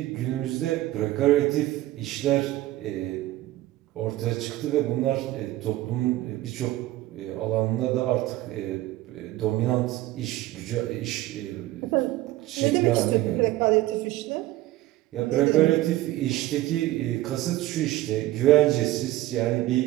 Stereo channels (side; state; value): left; quieter; 16.2 dB